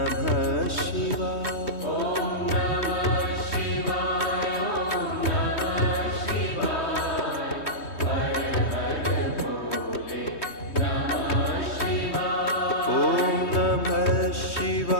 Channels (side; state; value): right; late; 3.2 ms